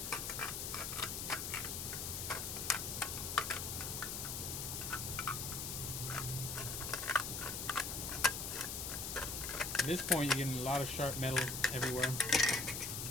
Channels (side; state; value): left; noise; hiss, 3 dB below the sound